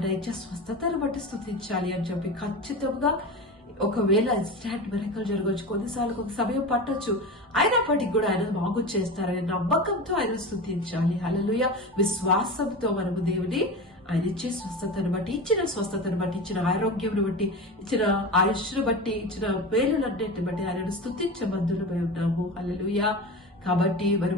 ఇచ్చే స్వస్థతను బట్టి స్తుతించాలి అని చెప్పి ఖచ్చితంగా ఒకవేళ ఇన్స్టాంట్ మిరకల్ జరగవచ్చు, కొన్నిసార్లు ఒక సమయం పట్టొచ్చు, అయినప్పటికీ కూడా ఆయన బాగు చేస్తారనే నమ్మకంతో ఆయన స్తుతించాలి. హల్లెలూయా. విశ్వాసంతో మనము దేవుని ఆయన ఇచ్చే స్వస్థతను బట్టి, ఇచ్చిన స్వస్థతను బట్టి, ఇచ్చిన ఆరోగ్యం బట్టి, ఇచ్చిన ఆయుష్ను బట్టి, ఇచ్చిన మేలులన్నిటిని బట్టి ఆయనను స్తుతించబద్ధులమై ఉన్నాము. హల్లెలూయా. కాబట్టి మరి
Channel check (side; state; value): both; normal; correlation 0.27